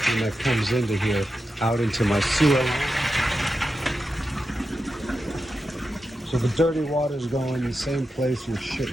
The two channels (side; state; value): both; normal; correlation 0.90